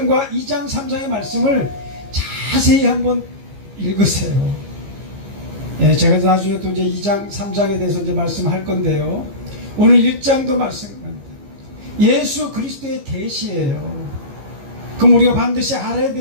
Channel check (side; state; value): left; late; 15 ms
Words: 2장, 3장의 말씀을 자세히 한번 읽으세요. 예, 제가 나중에 또 이제 2장, 3장에 대해서 이제 말씀할 건데요. 오늘 1장도 말씀합니다. 예수 그리스도의 계시예요. 그럼 우리가 반드시 알아야